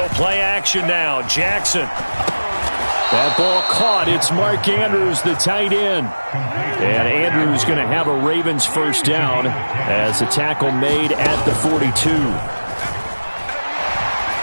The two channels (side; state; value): both; inverted; correlation -1.00